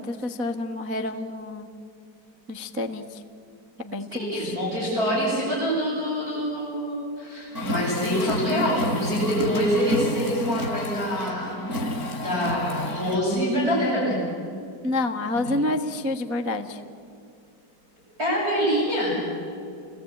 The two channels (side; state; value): left; late; 4.5 ms